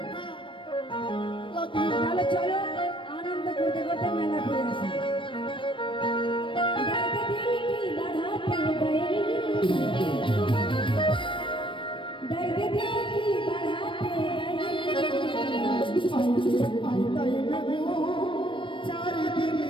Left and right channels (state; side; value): late; right; 0.25 ms